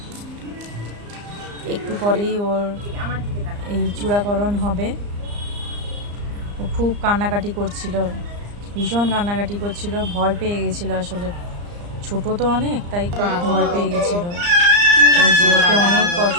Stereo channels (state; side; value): late; left; 34 ms